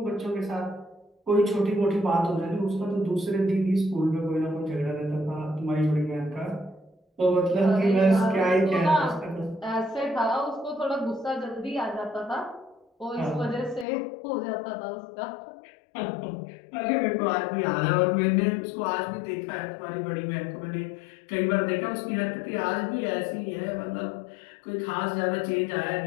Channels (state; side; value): drops out; right; at 13.9 s